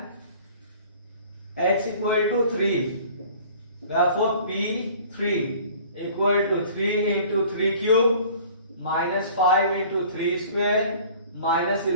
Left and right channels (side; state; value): both; inverted; correlation -0.49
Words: x equal to 3, therefore p3 equal to 3 into 3 cube minus 5 into 3 square minus